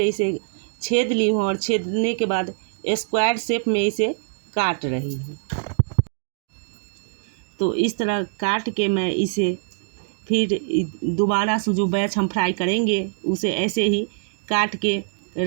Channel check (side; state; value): left; silent; digital silence